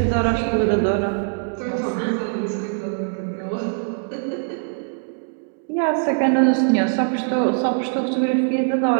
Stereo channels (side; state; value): left; silent; digital silence